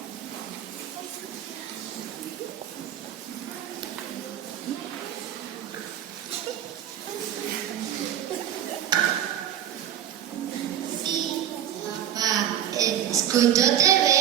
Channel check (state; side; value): quieter; left; 10.7 dB